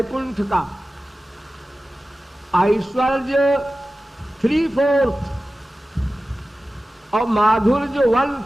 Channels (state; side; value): normal; both; correlation 0.95